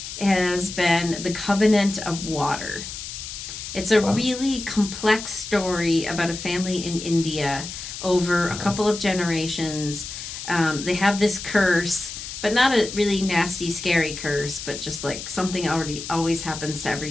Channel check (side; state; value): left; noise; hiss, 9 dB below the sound